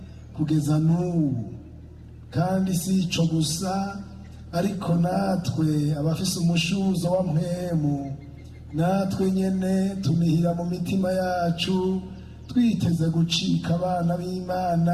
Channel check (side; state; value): both; identical; correlation 1.00